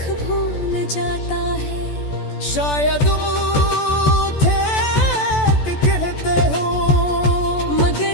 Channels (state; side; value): late; right; 14 ms